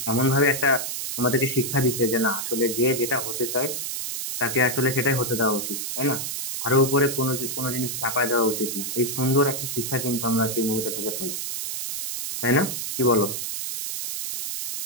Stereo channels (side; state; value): right; noise; hiss, 4 dB below the sound